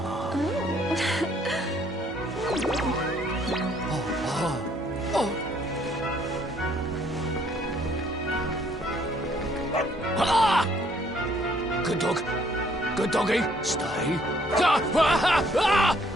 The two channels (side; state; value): both; normal; correlation 0.64